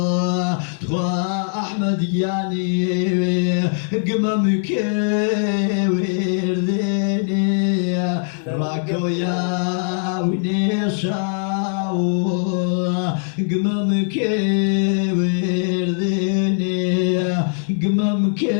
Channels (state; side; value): silent; right; 65 dB below the other